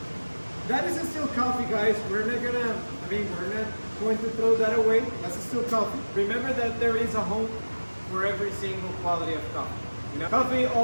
That is still coffee, guys. We're not going to throw that away. That's still coffee. Remember that there is a home for every single quality of coffee. You know, coffee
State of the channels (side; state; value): both; inverted; correlation -1.00